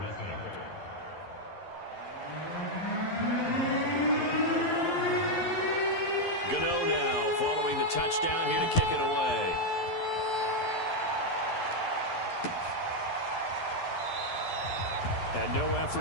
Gano now following the touchdown here to kick it away. And no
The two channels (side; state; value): right; late; 11 ms